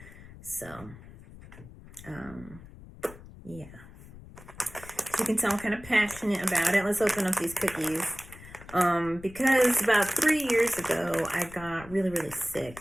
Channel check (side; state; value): left; noise; rumble, 18 dB below the sound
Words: So, yeah. You can tell I'm kind of passionate about it. Let's open up these cookies. Because about 3 years ago, I got really, really sick.